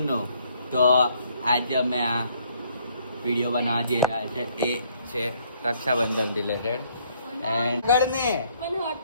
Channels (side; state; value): both; inverted; correlation -0.66